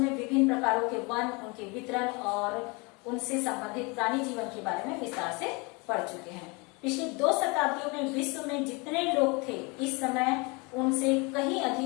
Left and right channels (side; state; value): right; quieter; 28.7 dB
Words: विभिन्न प्रकारों के वन, उनके वितरण और उनसे संबंधित प्राणी जीवन के बारे में विस्तार से पढ़ चुके हैं। पिछली 2 शताब्दियों में विश्व में जितने लोग थे, इस समय उनसे कहीं